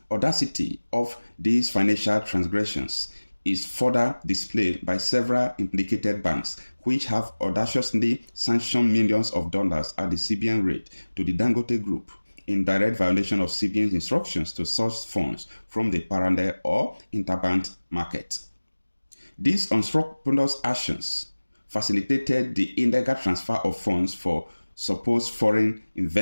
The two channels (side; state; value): both; inverted; correlation -1.00